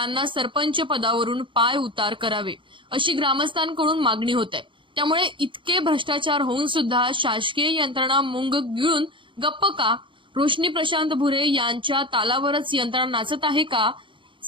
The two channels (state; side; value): late; left; 0.24 ms